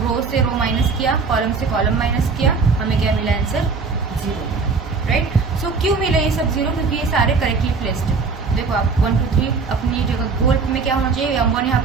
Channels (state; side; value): quieter; left; 4.7 dB